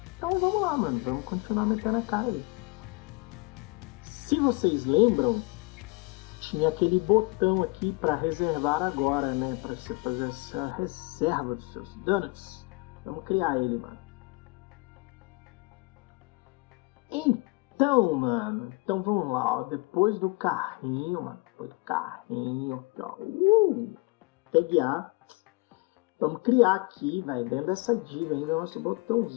Então vamos lá, mano. Vamos continuar metendo a cara aí. Se vocês lembram, tinha aquele botão aqui para reservar agora, né? Para você fazer essa reserva dos seus donuts. Vamos criar ele, mano. Então, mano. Então vamos lá, ó. Depois do carrinho, mano. Depois do carrinho, aqui, ó. Tag A. Vamos criar aqui, velho, dentro dessa div ainda, nosso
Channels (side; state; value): right; quieter; 25.6 dB